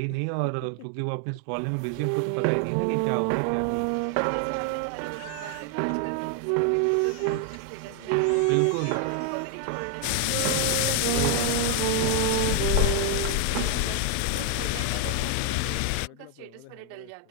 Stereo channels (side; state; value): both; different; correlation 0.00